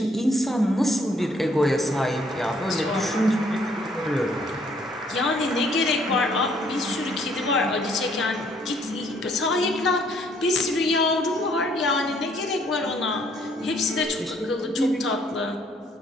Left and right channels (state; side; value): normal; both; correlation 0.65